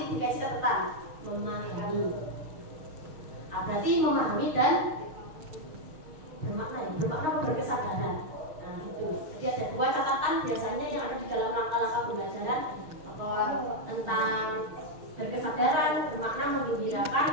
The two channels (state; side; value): late; left; 6.4 ms